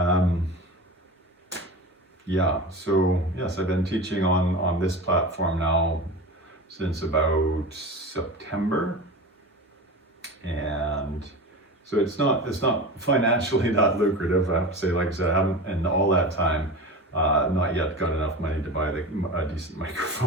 Yeah, so yes, I've been teaching on this platform now since about September, and so it's not financially that lucrative. I have to say, like I said, I haven't in all that time not yet got enough money to buy a decent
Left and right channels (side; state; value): both; normal; correlation 0.29